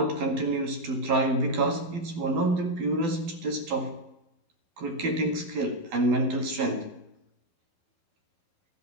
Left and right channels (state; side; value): late; left; 12 ms